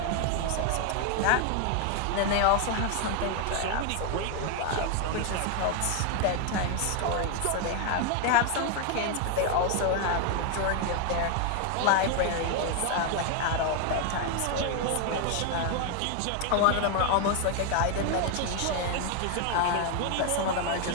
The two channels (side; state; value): both; different; correlation 0.01